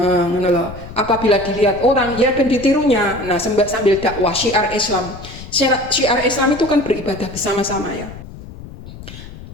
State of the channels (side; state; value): left; noise; rumble, 14 dB below the sound